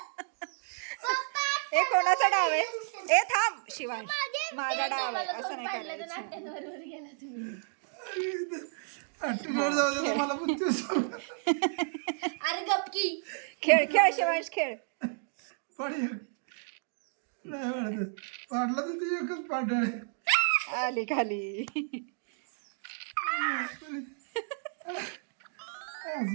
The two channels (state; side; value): silent; left; digital silence